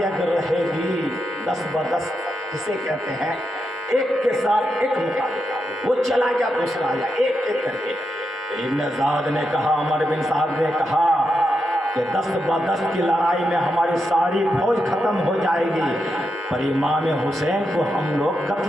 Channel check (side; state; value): both; normal; correlation 0.85